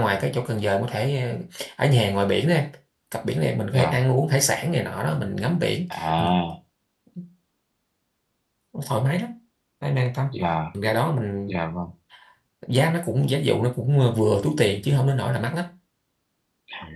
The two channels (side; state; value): both; identical; correlation 1.00